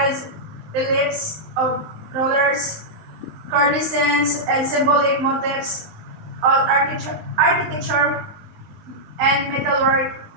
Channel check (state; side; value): late; left; 19 ms